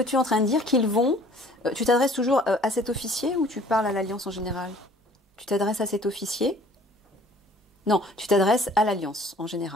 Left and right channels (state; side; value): normal; both; correlation 0.53